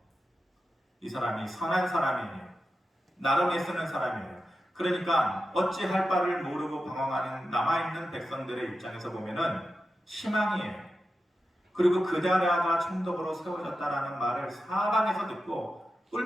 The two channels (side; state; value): both; normal; correlation 0.91